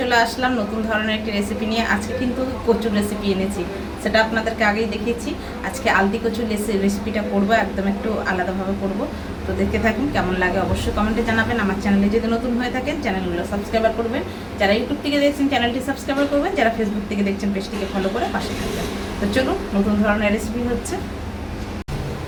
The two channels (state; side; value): identical; both; correlation 1.00